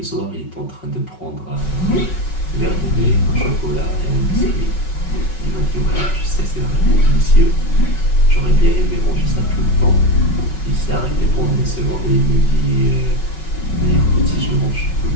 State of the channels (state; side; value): late; right; 5.4 ms